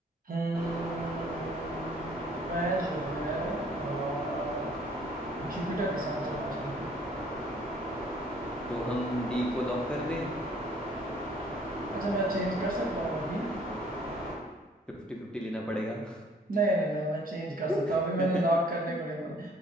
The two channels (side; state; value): both; normal; correlation 0.58